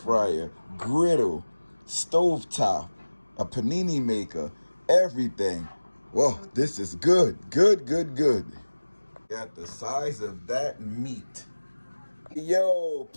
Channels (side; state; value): both; inverted; correlation -1.00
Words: griddle, stovetop, a panini maker, everything. Whoa, this is good. Good, good, good. Got the size of that meat. Yo,